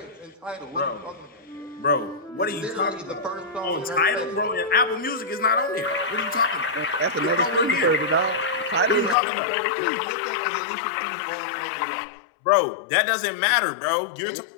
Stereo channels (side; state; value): right; drops out; at 9.2 s